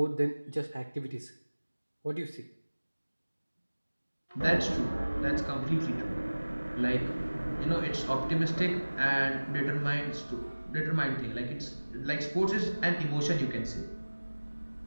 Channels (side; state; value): both; inverted; correlation -1.00